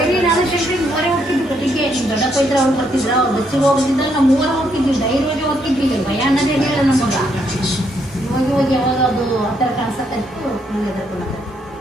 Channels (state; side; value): normal; both; correlation 0.74